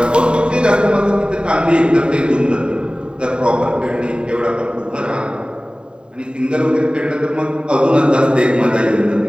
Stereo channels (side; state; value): left; late; 0.050 ms